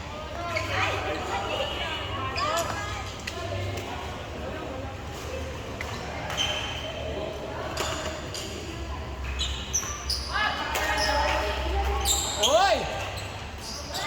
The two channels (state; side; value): identical; both; correlation 1.00